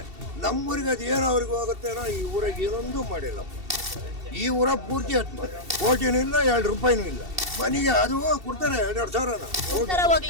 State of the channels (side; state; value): left; late; 2.7 ms